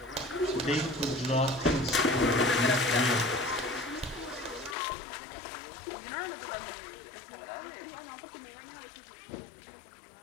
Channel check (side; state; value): right; drops out; at 4.8 s